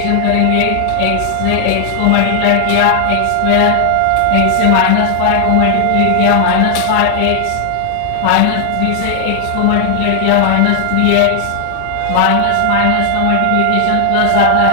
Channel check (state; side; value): different; both; correlation 0.00